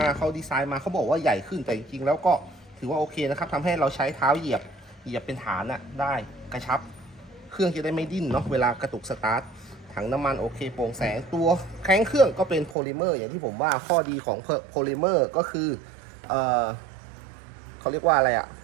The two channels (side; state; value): left; drops out; at 12.8 s